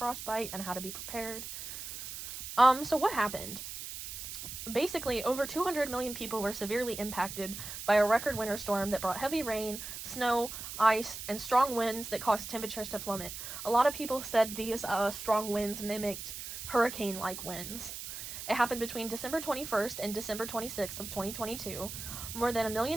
and how to be prepared. So what happened? Basically, over 200 million people were severely impacted by a record winter storm that brought heavy rain, snow, ice, and strong winds that caused temperatures to plummet. A lot of people said these strong winds mimicked hurricane-like winds. It happened between December 21st and December 26th of 2022. More than 1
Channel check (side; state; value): right; noise; hiss, 8 dB below the sound